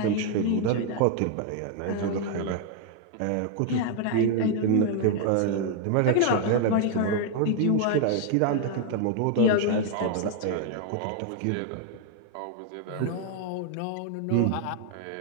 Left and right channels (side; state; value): both; different; correlation 0.00